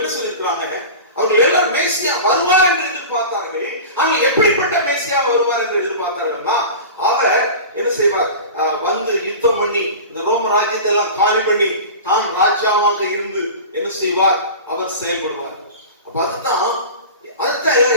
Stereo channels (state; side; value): inverted; both; correlation -0.33